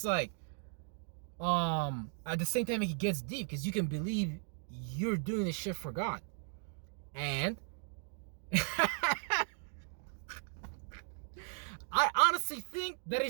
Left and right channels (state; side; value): silent; left; 53 dB below the other